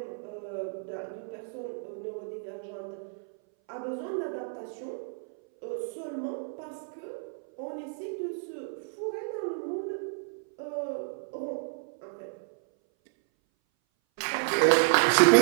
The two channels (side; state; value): left; silent; 57 dB below the other